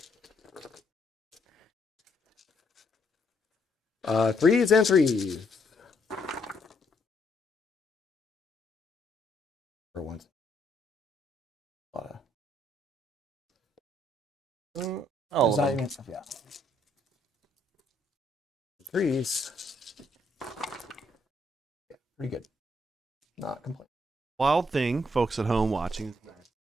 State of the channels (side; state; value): both; normal; correlation 0.72